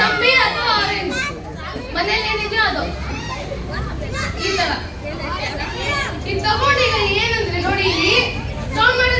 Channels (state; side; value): identical; both; correlation 1.00